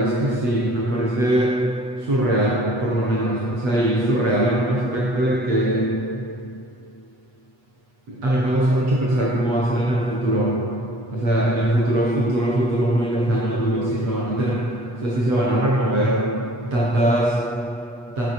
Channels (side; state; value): left; late; 8.2 ms